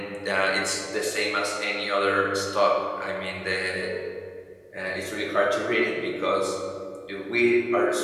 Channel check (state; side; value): identical; both; correlation 1.00